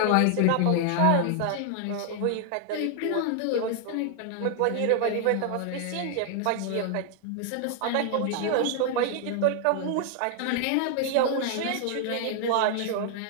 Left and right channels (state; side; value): different; both; correlation 0.00